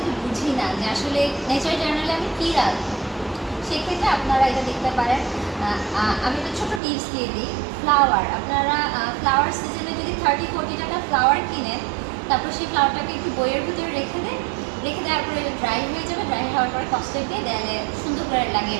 বুঝি না যে আসলে নেচার জার্নালে আমি কী রাখবো, সেক্ষেত্রে আপনারা এটা দেখতে পারেন। আমি একটা ছোটো টিপস দিয়ে দিই। ফ্লাওয়ার, আপনারা ফ্লাওয়ার সিজনে যদি 30-40 টাকা ফ্লাওয়ার কিনেন, তারপর সেই ফ্লাওয়ারটাকে একটু বইয়ের ভিতরে রেখে দেওয়ার পরে ড্রাই হয়ে যাবে, ড্রাই হওয়ার পরে কস্টেপ দিয়ে দেয়ালে সুন্দর করে লাগিয়ে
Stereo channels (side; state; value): left; drops out; at 6.8 s